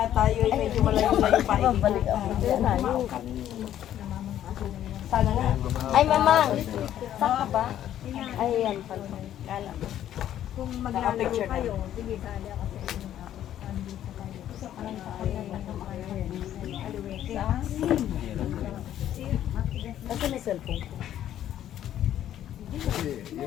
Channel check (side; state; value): right; quieter; 11.4 dB